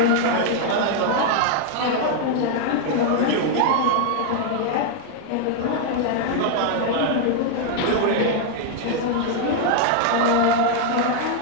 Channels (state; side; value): different; both; correlation 0.00